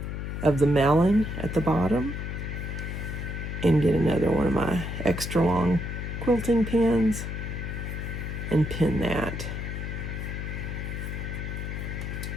of the melon at the bottom, and get another one of my extra long quilting pins and pin that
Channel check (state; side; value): noise; left; hum, 5 dB below the sound